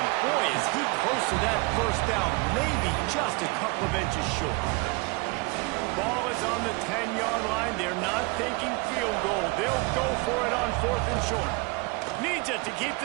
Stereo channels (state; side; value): quieter; left; 27.1 dB